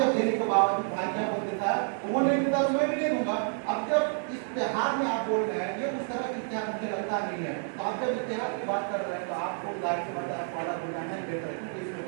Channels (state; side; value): silent; left; 58 dB below the other